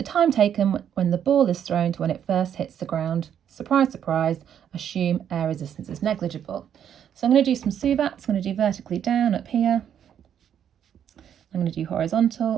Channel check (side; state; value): left; quieter; 9.2 dB